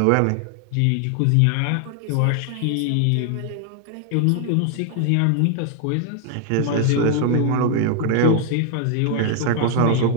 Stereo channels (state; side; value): different; both; correlation 0.00